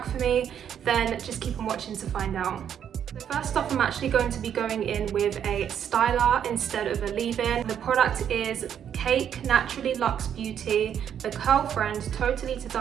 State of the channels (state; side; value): quieter; left; 9.0 dB